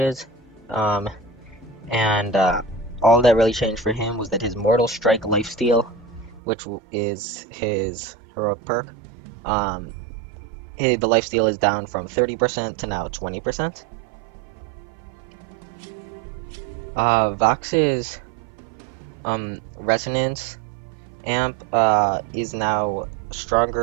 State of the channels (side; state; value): left; drops out; at 6.4 s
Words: um, and all that really changed for him was that his Mortal Strike lifesteal, which is his heroic perk, um, the lifesteal is down from 30% to now 20%. Vox's Resonance amp is now